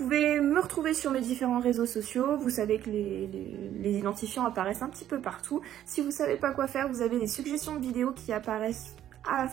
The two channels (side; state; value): left; quieter; 11.5 dB